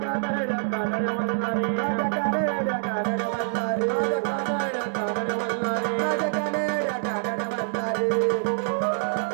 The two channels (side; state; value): left; silent; 61 dB below the other